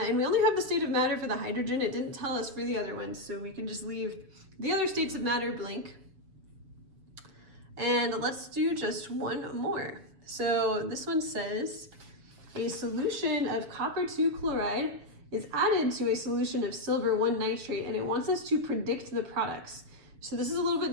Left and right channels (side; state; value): left; late; 7.0 ms